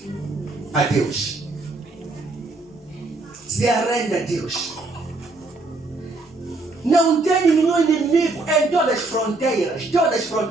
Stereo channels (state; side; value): quieter; left; 3.2 dB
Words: a Deus. Se arrende a Deus. Não tem nenhum inimigo em todas as fronteiras. Todas as